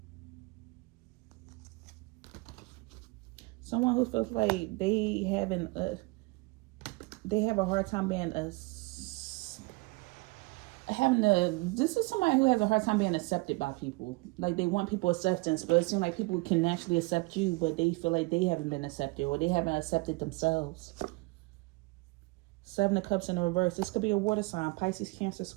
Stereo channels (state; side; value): quieter; left; 25.3 dB